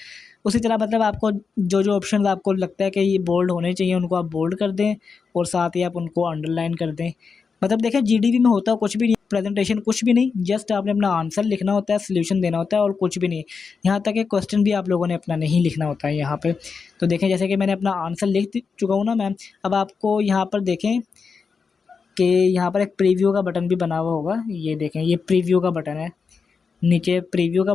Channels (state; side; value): quieter; right; 5.3 dB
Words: उसी तरह मतलब आपको जो जो ऑप्शन आपको लगता है कि ये बोल्ड होने चाहिए उनको आप बोल्ड कर दें, और साथ ही आप उनको अंडरलाइन कर दें। मतलब देखें जीडीबी में होता कुछ भी नहीं, प्रेजेंटेशन कुछ भी नहीं, जस्ट आपने अपना आंसर लिखना होता है, सोल्यूशन देना होता है, और कुछ भी नहीं। यहाँ तक कि क्वेश्चन भी आप लोगों ने अपना नहीं लिखना होता है यहाँ पे। तो देखें जैसे कि मैंने अपना आंसर लिख चुका हूँ ना मैम। अब आपको यहाँ पर देखें कि यहाँ पर एक प्रीव्यू का बटन भी बना हुआ होगा। ये देखें, ये प्रीव्यू का बटन है। नीचे प्रीव्यू का